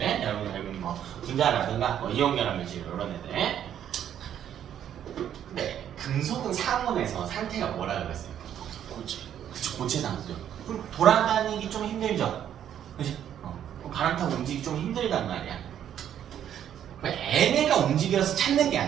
여러분 뭐 분자라든가 뭐 이온 결합 물질 이런 애들. 근데 금속은 상온에서 상태가 뭐라고 그랬어요? 고체. 그쵸, 고체 상태죠. 그럼 돌아다니기 좀 힘들죠. 그지? 바람 타고 움직이기 좀 힘들단 말이야. 얘네가 움직여서 찾는 게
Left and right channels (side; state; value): left; quieter; 10.0 dB